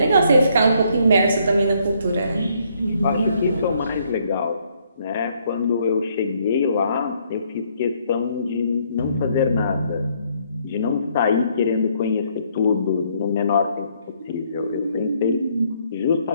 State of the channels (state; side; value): inverted; both; correlation -0.69